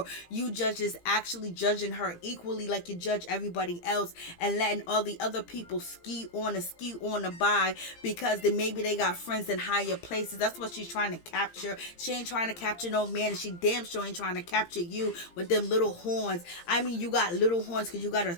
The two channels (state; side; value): late; right; 17 ms